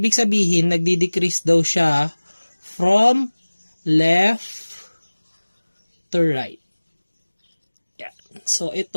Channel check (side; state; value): both; inverted; correlation -1.00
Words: sabihin, nagdi-decrease daw siya from left to right. Yeah. So,